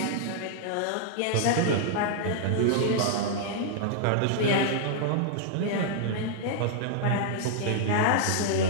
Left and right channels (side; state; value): both; different; correlation -0.01